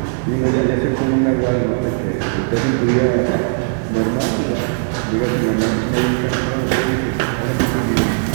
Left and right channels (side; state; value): left; silent; digital silence